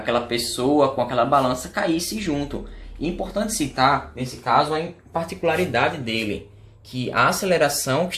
pessoa com aquela balança caísse junto. E é importante citar, nesse caso, a particularidade dele, que a aceleração que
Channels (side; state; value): both; identical; correlation 1.00